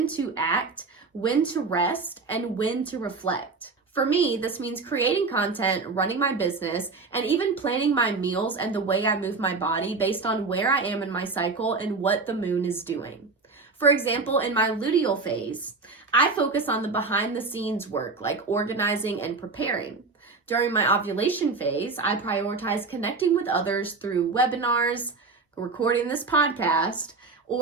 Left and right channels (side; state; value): left; quieter; 4.1 dB